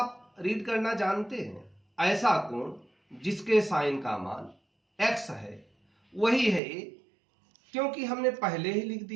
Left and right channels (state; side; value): drops out; left; at 6.6 s